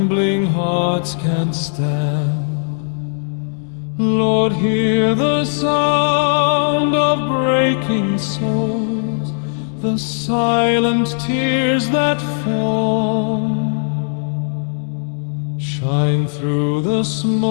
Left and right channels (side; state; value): right; silent; digital silence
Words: hearts can't stand. Lord, hear the sound of breaking souls, the silent tears that fall. Shine through the